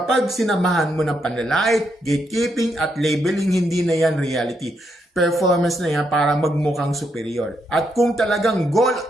sinamahan mo ng panlalait, gatekeeping at labeling, hindi na yan reality. Performance na yan para magmukhang superior. At kung talagang goal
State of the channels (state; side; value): normal; both; correlation 0.78